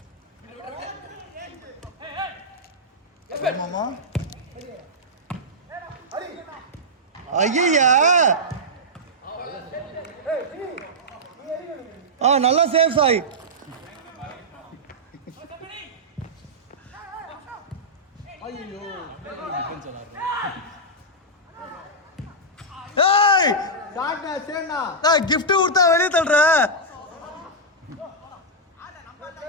ஆமாமா. ஐயா நல்லா சேஃப் சாய். கிஃப்ட் கொடுத்தா வெளியே தள்ளுற.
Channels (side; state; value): both; normal; correlation -0.09